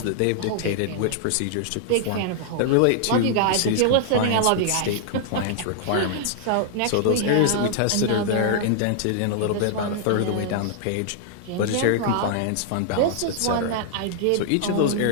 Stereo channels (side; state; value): both; different; correlation -0.01